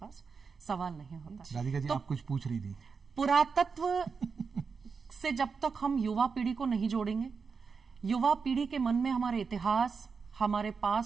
सवाल नहीं होता। राधिका जी, तो आप कुछ पूछ रही थी। पुरातत्व से जब तक हम युवा पीढ़ी को नहीं जोड़ेंगे, युवा पीढ़ी के मन में हमारे इतिहास, हमारे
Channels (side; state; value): left; quieter; 5.4 dB